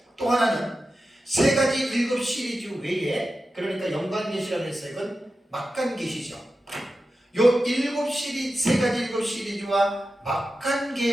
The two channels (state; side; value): normal; both; correlation 0.92